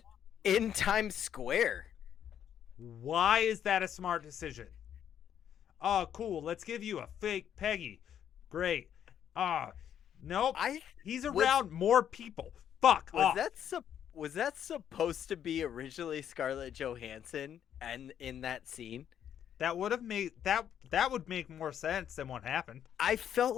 In Times Square. Why is that a smart decision? Oh, cool. Let's give you a fake Peggy. Great. Nope. He's around more people. Fuck off. Was that supposed to be originally Scarlett Johansson and in that scene? That would have made that would make more sense than what happened. I felt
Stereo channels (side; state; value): right; quieter; 9.5 dB